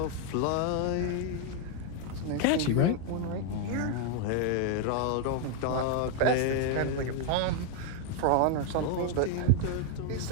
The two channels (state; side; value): different; both; correlation 0.00